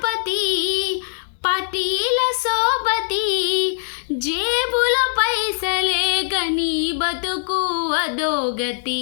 పటీల సోబతి. జేబుల పైసలే గని బతుకు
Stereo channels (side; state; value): right; silent; digital silence